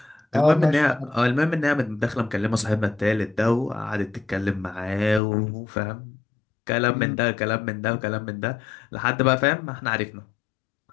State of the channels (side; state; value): right; drops out; at 5.2 s